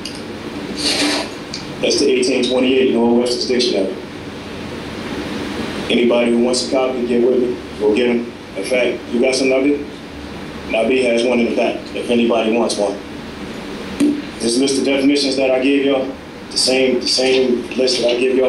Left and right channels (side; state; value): both; identical; correlation 1.00